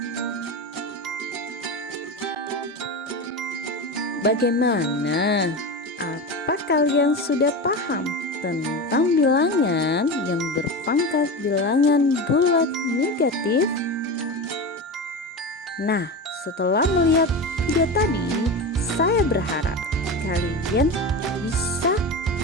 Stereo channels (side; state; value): both; normal; correlation 0.23